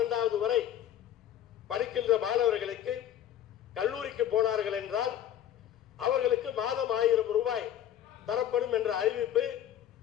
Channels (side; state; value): right; quieter; 10.7 dB